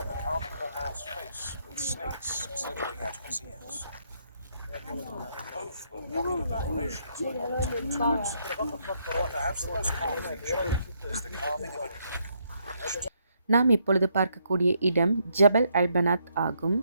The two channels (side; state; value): both; inverted; correlation -0.74